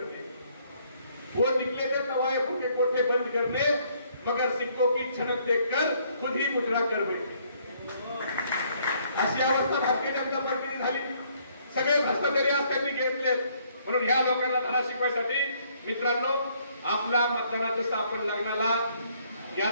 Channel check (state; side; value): inverted; both; correlation -0.66